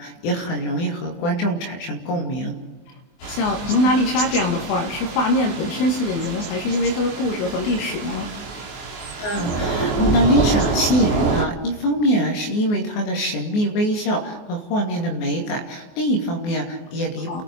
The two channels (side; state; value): right; late; 24 ms